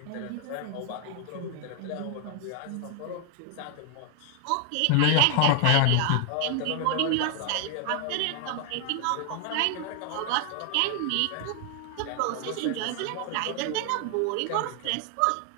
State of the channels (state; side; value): different; both; correlation 0.00